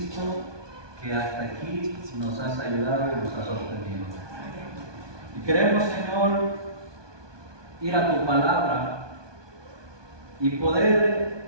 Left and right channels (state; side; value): late; left; 1.2 ms